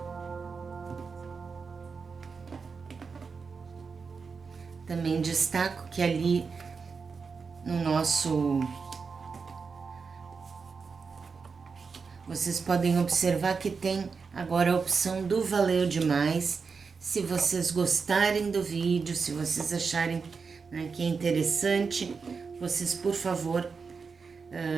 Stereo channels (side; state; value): left; quieter; 5.2 dB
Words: Também destaco que ali no nosso... Vocês podem observar que tem agora a opção do Valeu Demais. Se vocês gostarem do vídeo, se vocês acharem que é interessante, vocês, por favor,